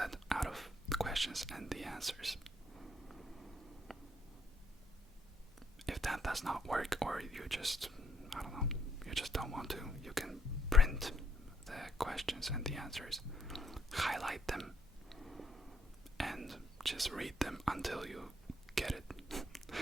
out of the questions and the answers. If that does not work, or you just, you just don't want to, you can print the questions and the answers, highlight them, and just read them until you get it.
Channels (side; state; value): both; normal; correlation 0.70